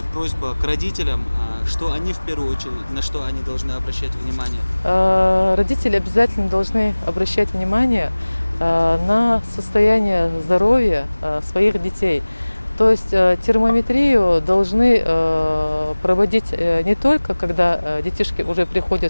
просьба к родителям, что они в первую очередь, на что они должны обращать внимание? Родители обязательно должны обращать внимание на состояние здоровья своих детей. То есть термометрию должны проводить не только, когда детишки уже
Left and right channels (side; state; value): both; inverted; correlation -1.00